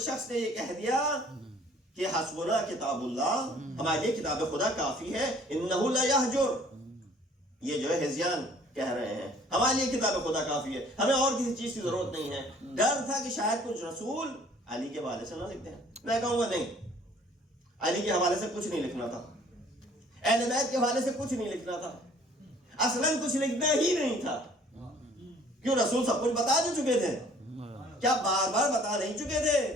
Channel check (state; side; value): normal; both; correlation 0.56